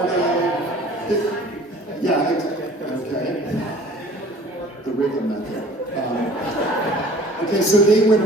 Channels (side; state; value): both; normal; correlation 0.48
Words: of. Yeah, okay. The rhythm method. Okay, so they win